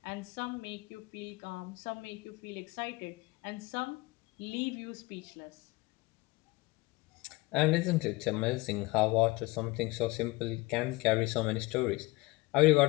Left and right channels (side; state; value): right; quieter; 22.3 dB